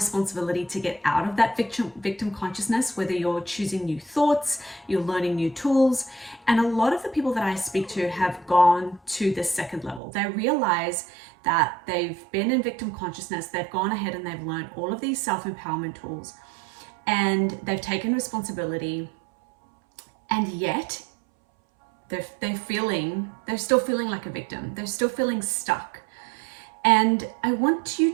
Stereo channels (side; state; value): left; drops out; at 10.0 s